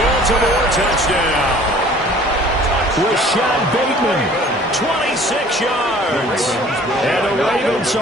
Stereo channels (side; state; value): both; normal; correlation 0.51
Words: touchdown. Rashad Bateman, 26 yards. And the Ravens